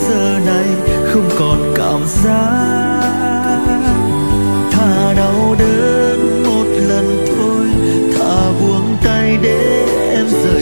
giờ này không còn cảm giác. Thà đau đớn một lần thôi, thà buông tay để em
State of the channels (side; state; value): both; inverted; correlation -1.00